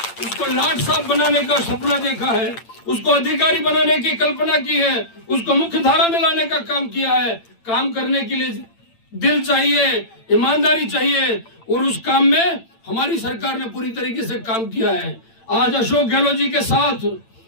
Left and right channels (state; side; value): late; right; 8.8 ms